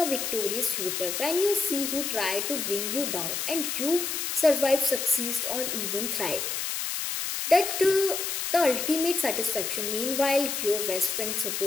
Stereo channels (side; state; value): left; noise; hiss, 2 dB below the sound